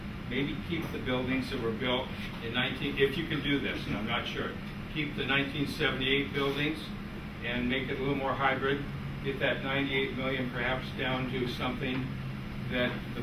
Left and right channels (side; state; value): both; identical; correlation 1.00